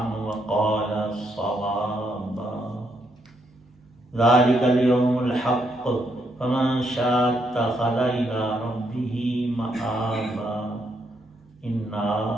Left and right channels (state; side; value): normal; both; correlation 0.76